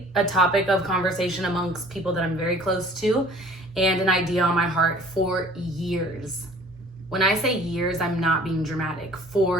a topic of conversation amongst people that I'm very close to and an idea on my heart for years. When I say years, I'm not being dramatic.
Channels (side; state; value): both; normal; correlation 0.50